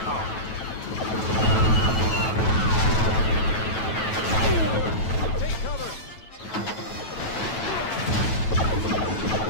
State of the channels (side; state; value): right; late; 9.2 ms